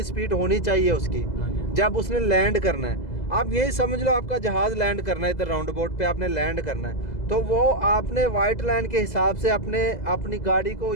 स्पीड होनी चाहिए उसकी जब उसने लैंड करना है। आप यही समझ लो, आपका जहाज़ लैंड करना है, इधर राउंड बोट पे आपने लैंड करना है, तो वो आपने वाइट लाइन के हिसाब से अपनी गाड़ी को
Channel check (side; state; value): right; late; 2.0 ms